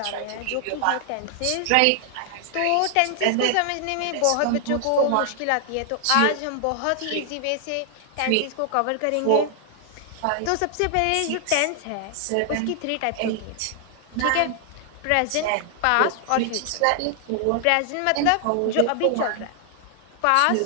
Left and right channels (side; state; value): both; different; correlation 0.00